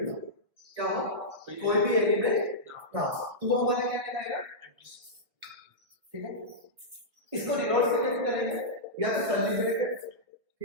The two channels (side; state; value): left; late; 1.7 ms